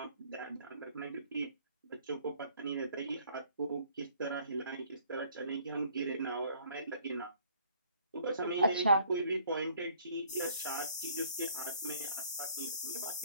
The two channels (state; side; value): inverted; both; correlation -0.59